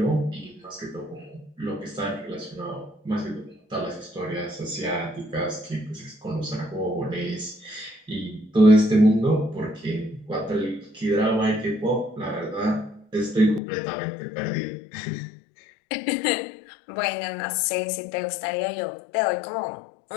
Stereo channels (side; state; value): right; drops out; at 13.6 s